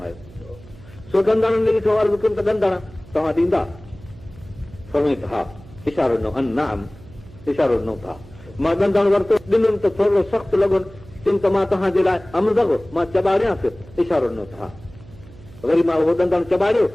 सो ॾंदड़नि ने ॾिठो अर्ज़ु कयुमि त ॾंदड़ तव्हां ॾींदा? फरमाई त हा। इशारो ॾिनो, नाम इशारो ॾिनो था। मां ॾंदड़ वरितो, ॾिनुमि त थोरो सख़्तु लॻो, चयुमि त मां तव्हांजे लाइ अमज़ मां चॿारियांसि, इशारो ॾिनो था। वरी मां उहो ॾंदड़ चॿारियो,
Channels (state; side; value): noise; right; hum, 21 dB below the sound